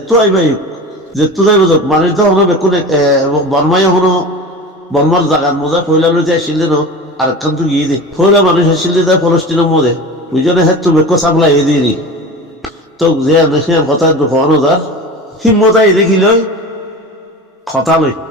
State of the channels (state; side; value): normal; both; correlation 0.32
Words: আইবাই যেতো যাইব যাক মানে তো হলো বেকুন বর্মাই হলো বর্মার জাগার মজা ফইলা লইতে আসিলে ন আর একখান তো গিয়ে দে ফইলা মানুষ আসিলে তাই ফলস্তিনের মধ্যে বুঝলে হ্যাঁ তো বেকো সাপ্লাই এ দিয়ে তো যে সে কথা দুঃখানো যার হিম্মত আই দেখি লই কথা লই